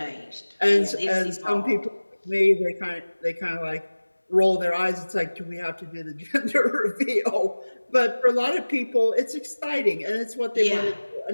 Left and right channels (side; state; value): both; inverted; correlation -1.00